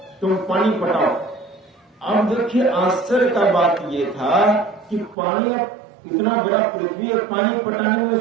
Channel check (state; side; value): drops out; left; at 5.2 s